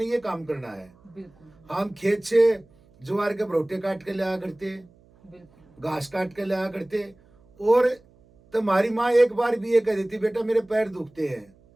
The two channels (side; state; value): right; noise; hum, 30 dB below the sound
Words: ये काम करना है। बिल्कुल। हम खेत से ज्वार के भरोटे काट के लाया करते, घास काट के लाया करते, और तो हमारी माँ एक बार भी ये कह देती, बेटा मेरे पैर दुखते हैं,